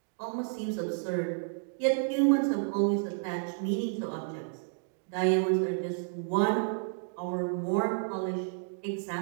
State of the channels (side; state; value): left; silent; digital silence